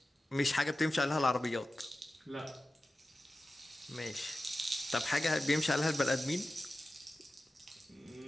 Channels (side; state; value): both; normal; correlation 0.94